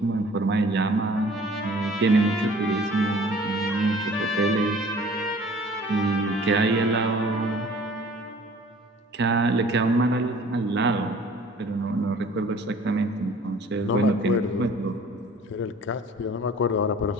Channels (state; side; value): normal; both; correlation 0.50